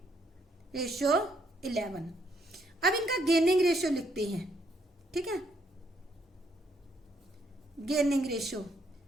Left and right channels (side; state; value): both; normal; correlation 0.71